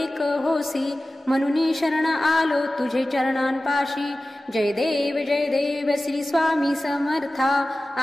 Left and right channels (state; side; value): normal; both; correlation 0.96